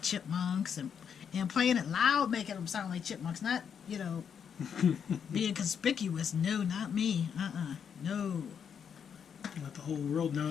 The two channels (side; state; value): right; quieter; 7.5 dB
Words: chipmunks and playing it loud, making them sound like chipmunks. Not, you know, being conspicuous. No, not me. No. Let the whole world